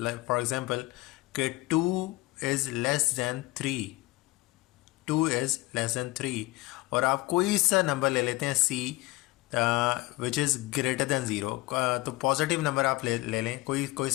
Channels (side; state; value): right; quieter; 20.1 dB